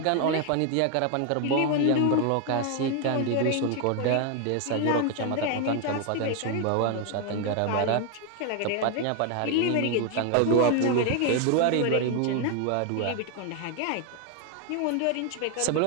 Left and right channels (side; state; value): both; different; correlation 0.01